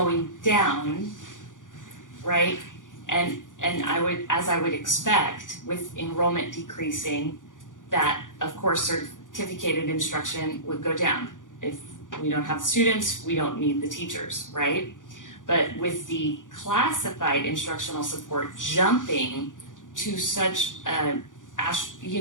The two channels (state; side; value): late; right; 0.88 ms